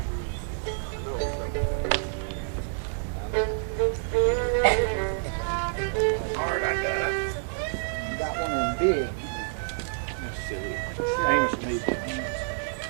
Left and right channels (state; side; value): silent; left; digital silence